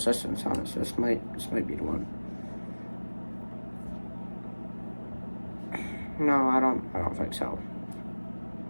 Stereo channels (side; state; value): both; inverted; correlation -1.00